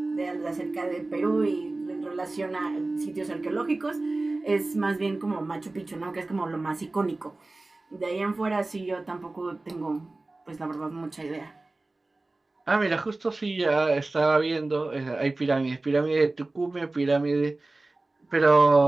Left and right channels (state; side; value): quieter; left; 3.1 dB